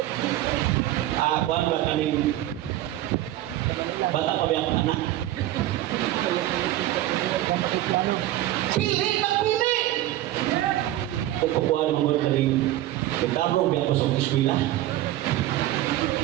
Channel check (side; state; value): left; quieter; 14.6 dB